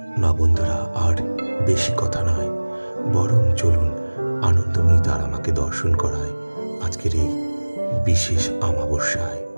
না বন্ধুরা, আর বেশি কথা নয়, বরং চলুন আনন্দময়ী তারা মাকে দর্শন করায় আজকের এই বিশেষ অমাবস্যায়।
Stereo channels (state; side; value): inverted; both; correlation -1.00